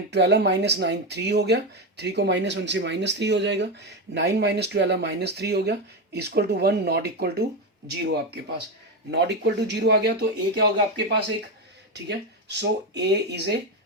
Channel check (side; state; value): both; normal; correlation 0.13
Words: 12 माइनस 9 3 हो गया, 3 को माइनस 1 से माइनस 3 हो जाएगा, 9 माइनस 12 माइनस 3 हो गया, equal to 1 not equal to 0 आपके पास। नॉट इक्वल टू 0 आ गया तो ए क्या होगा आपके पास एक, ठीक है। So A is a